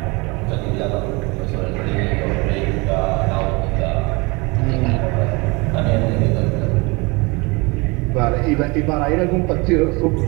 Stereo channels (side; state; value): left; quieter; 26.9 dB